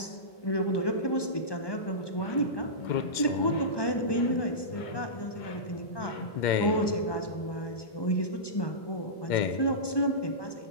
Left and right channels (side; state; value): right; late; 1.2 ms